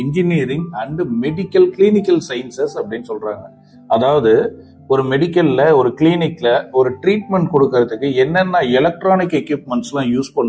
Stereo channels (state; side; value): identical; both; correlation 1.00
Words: engineering and medical clinical sciences அப்படின்னு சொல்றாங்க. அதாவது ஒரு மெடிக்கல்ல ஒரு கிளினிக்ல ஒரு ட்ரீட்மெண்ட் கொடுக்கறதுக்கு என்னென்ன எலக்ட்ரானிக் எக்யூப்மெண்ட்ஸ்லாம் யூஸ்